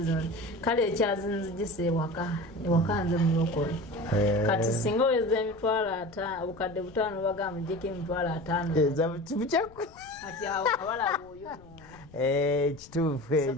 zino kale ekyazinzigisa ewaka nze mulokole kati singa oweza emitwalo obukadde 5 bagamba mujjeko emitwalo 5 kati awo abalaba oyo kituufu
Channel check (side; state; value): left; noise; rumble, 23 dB below the sound